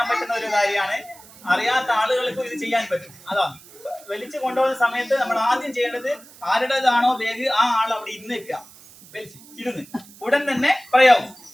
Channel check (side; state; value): right; noise; hiss, 22 dB below the sound